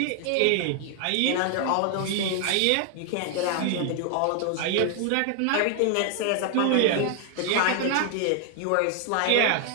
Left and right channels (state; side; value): different; both; correlation 0.00